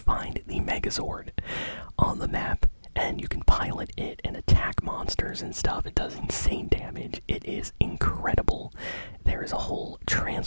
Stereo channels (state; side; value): inverted; both; correlation -1.00